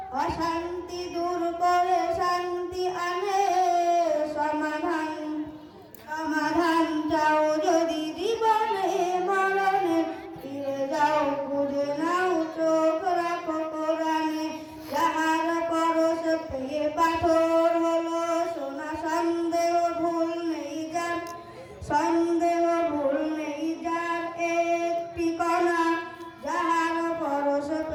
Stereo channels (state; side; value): identical; both; correlation 1.00